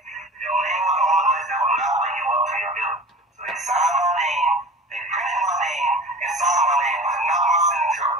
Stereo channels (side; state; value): both; normal; correlation 0.39